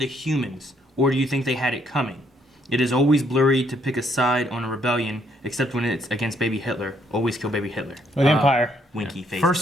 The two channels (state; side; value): normal; both; correlation 0.70